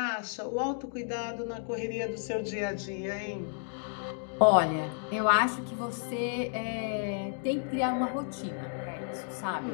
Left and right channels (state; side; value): silent; right; 56 dB below the other